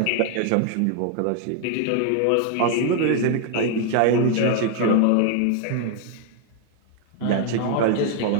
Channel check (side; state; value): both; different; correlation 0.00